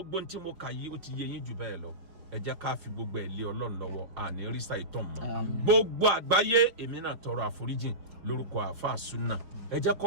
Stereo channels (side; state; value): left; late; 5.6 ms